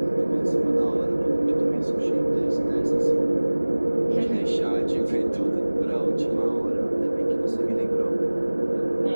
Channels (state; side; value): inverted; both; correlation -1.00